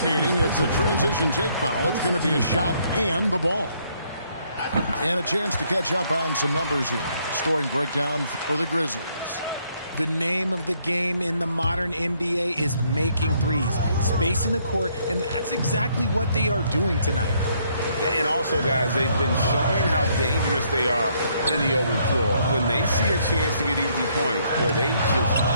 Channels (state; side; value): inverted; both; correlation -0.69